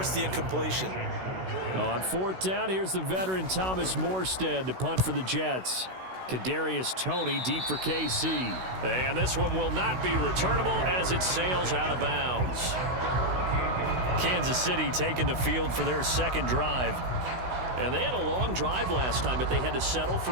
the incompletion. On 4th down, here's the veteran Thomas Morstead to punt for the Jets. Kadarius Toney deep for KC. And this one will not be returnable as it sails out of bounds. Kansas City taking the field for their 2nd drive. And they had a long drive last time, but they had to settle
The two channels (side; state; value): left; late; 16 ms